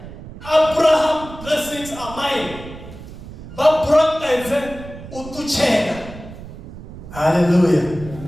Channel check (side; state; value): right; noise; rumble, 14 dB below the sound